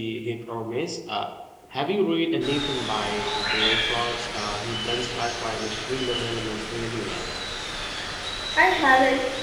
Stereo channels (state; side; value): identical; both; correlation 1.00